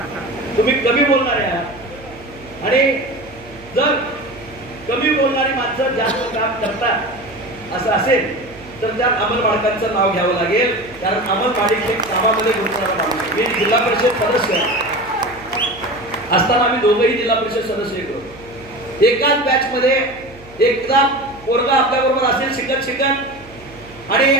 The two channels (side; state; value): right; noise; hum, 22 dB below the sound